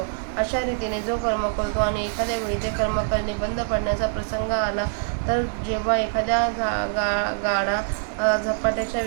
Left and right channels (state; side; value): silent; left; digital silence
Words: अशा रीतीने जो कर्म करतो आणि एखाद्या वेळी ते कर्म करणे बंद पडण्याचा प्रसंग आला तर जेव्हा एखाद्या गाडा झपाट्याच्या